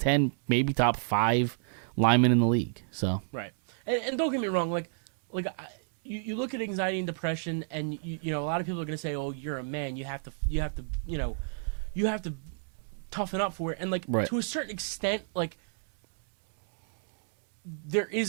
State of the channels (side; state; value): left; silent; digital silence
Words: maybe top 5 lineman in the league. So Right. And don't get me wrong, you look at anxiety and depression, and you know a lot of people are going to say, "Oh, you're a man. You have to toughen up for it." And like Right. to a certain extent, like there